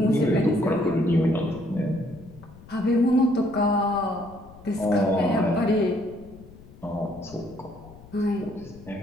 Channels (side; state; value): left; noise; rumble, 21 dB below the sound